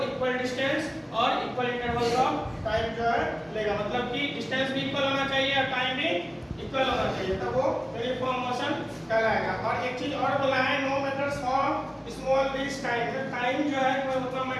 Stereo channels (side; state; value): both; identical; correlation 1.00